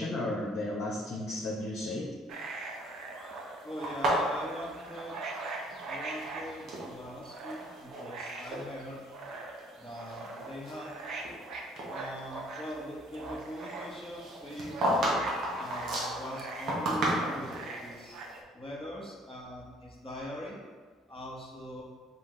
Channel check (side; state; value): both; normal; correlation 0.59